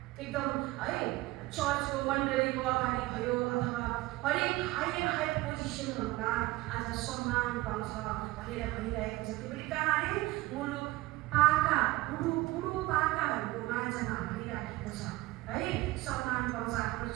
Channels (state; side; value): quieter; left; 19.7 dB